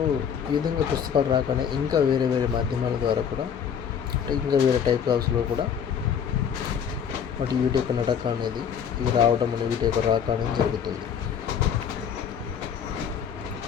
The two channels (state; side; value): quieter; right; 7.8 dB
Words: ఈ విధంగా పుస్తకాలు రాకనే ఇంకా వేరే మాధ్యమాల ద్వారా కూడా అంటే ఇంకా వేరే టైప్ ఆఫ్స్లో కూడా వీటి యొక్క నడక అనేది ఇవి రావడం అనేది వీటి యొక్క రాక అనేది జరుగుతుంది.